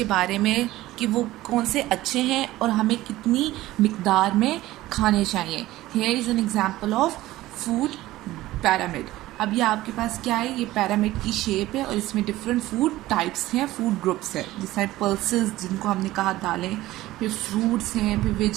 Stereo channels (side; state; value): left; quieter; 16.6 dB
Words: बारे में, कि वो कौन से अच्छे हैं और हमें कितनी मिकदार में खाने चाहिए. Here is an example of food pyramid. अब ये आपके पास क्या है, ये पैरामिड की शेप है और इसमें डिफरेंट फूड टाइप्स हैं, फूड ग्रुप्स हैं. जैसे पल्सेस जिनको हमने कहा दालें, फिर फ्रूट्स हैं, फिर